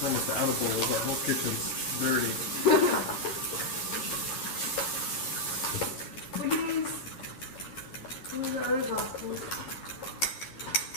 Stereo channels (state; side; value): late; right; 11 ms